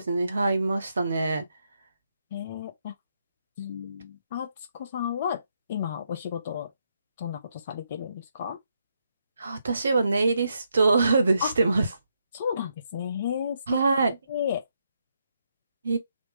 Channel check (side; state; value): both; inverted; correlation -0.79